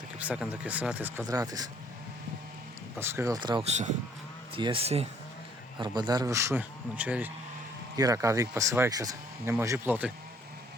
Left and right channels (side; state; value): both; normal; correlation 0.62